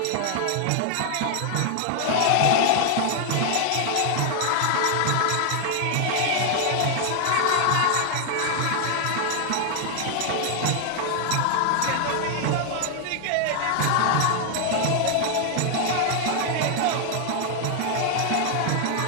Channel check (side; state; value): both; different; correlation 0.00